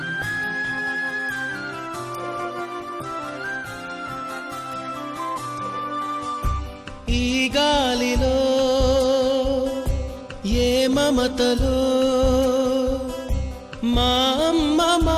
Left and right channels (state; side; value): identical; both; correlation 1.00